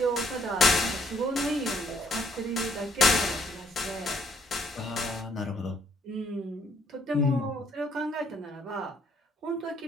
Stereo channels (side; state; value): both; normal; correlation 0.66